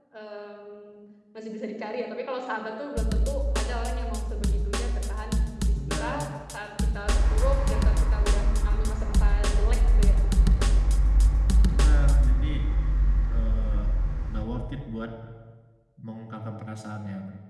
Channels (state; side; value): identical; both; correlation 1.00